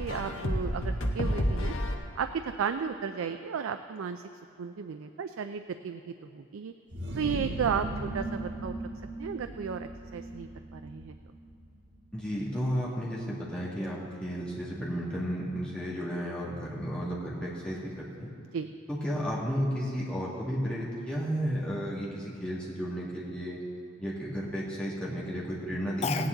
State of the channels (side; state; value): both; normal; correlation 0.59